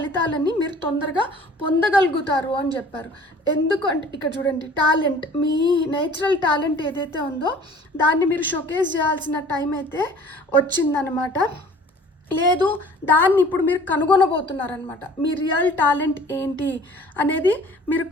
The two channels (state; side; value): normal; both; correlation 0.49